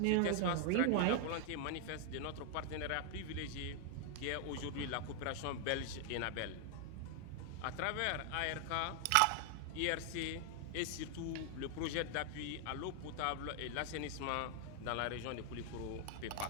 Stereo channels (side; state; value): both; different; correlation 0.00